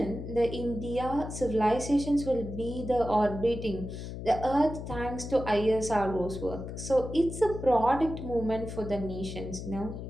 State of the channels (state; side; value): noise; left; hum, 8 dB below the sound